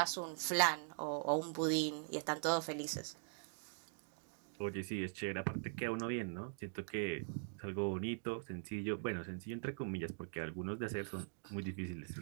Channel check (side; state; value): left; silent; digital silence